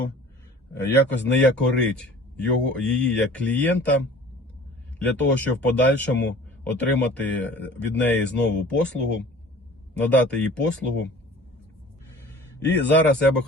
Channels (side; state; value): both; normal; correlation 0.45